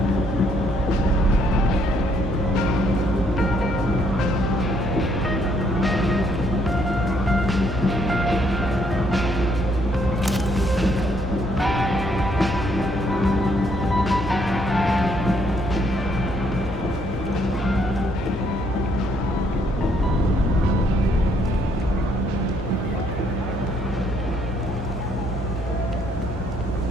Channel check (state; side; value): normal; both; correlation 0.69